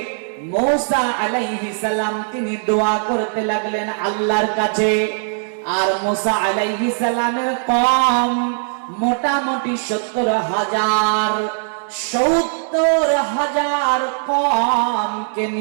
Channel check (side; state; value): left; silent; 66 dB below the other